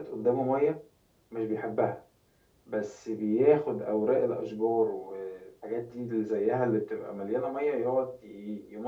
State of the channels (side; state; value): both; identical; correlation 1.00